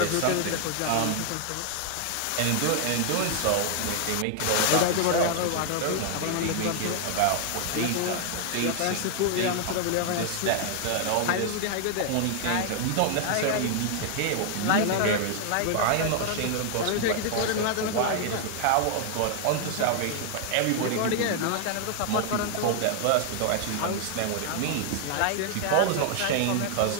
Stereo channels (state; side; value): different; both; correlation 0.00